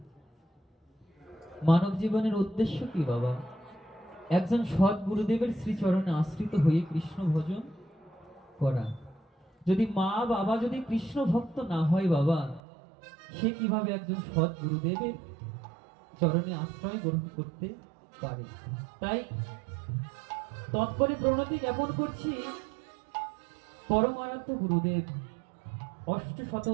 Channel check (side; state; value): left; drops out; at 12.6 s